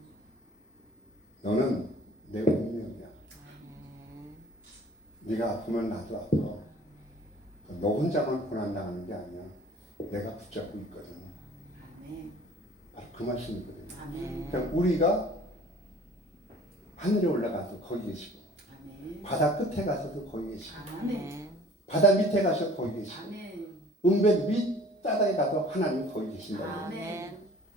너는 내 운명이야. 네가 아프면 나도 아파. 너 혼자만 고난당하는 게 아니야. 내가 붙잡고 있거든. 바로 그 말씀이거든요. 그러니까 우리가 하늘에 올라가서 거기 계시고 바다 끝에 가서도 거기 계시고 바다 밑에 가서 거기 계시고 은배 밑바닥에 가도 하나님 거기 계신다.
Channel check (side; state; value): both; normal; correlation 0.50